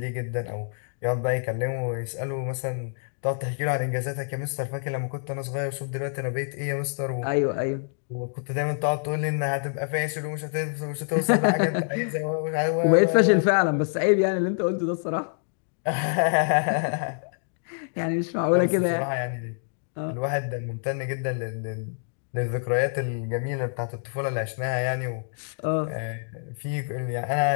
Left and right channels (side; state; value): right; silent; digital silence